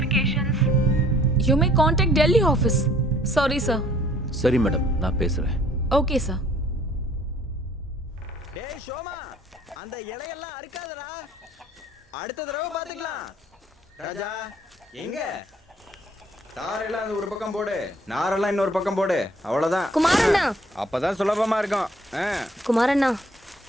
You may contact Delhi office. Sorry, sir. சரி மேடம், நான் பேசுகிறேன். Okay, sir. டேய் ஷோமா, அந்த இலையெல்லாம் அறுக்காதடா, அடுத்த தடவை பாத்துக்கலாம். ராஜா எங்க? தாரெல்லாம் அந்த ஒரு பக்கம் போடு, நாரெல்லாம் இன்னொரு பக்கம் போடு, அவ்வளவுதான். குமாரண்ணா, அப்பதான் சுலபமா இருக்கும். குமாரண்ணா,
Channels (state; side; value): normal; both; correlation 0.58